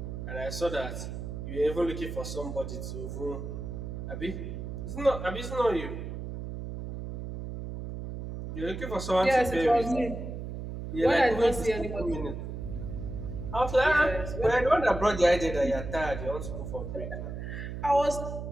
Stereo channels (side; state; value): right; noise; hum, 7 dB below the sound